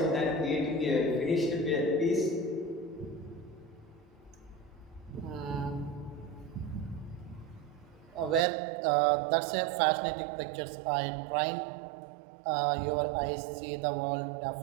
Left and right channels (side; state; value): left; drops out; at 8.4 s